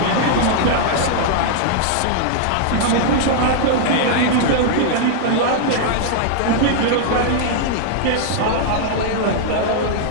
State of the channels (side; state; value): both; different; correlation -0.01